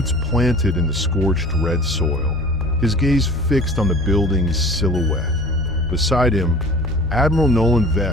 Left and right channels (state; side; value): normal; both; correlation 0.44